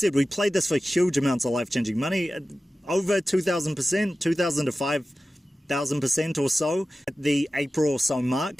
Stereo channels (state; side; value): normal; both; correlation 0.95